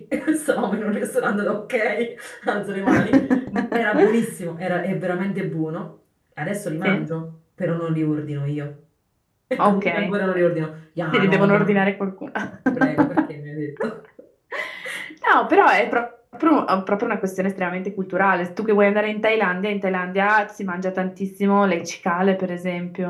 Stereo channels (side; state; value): both; identical; correlation 1.00